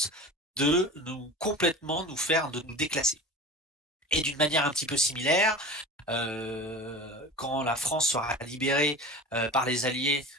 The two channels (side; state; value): both; normal; correlation 0.34